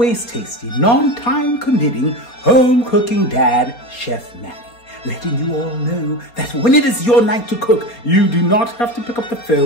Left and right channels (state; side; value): late; right; 4.3 ms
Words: tasty, non-time committing, home cooking dad, Chef Manny, letting you all know that when it is your night to cook, you do not have to pick up the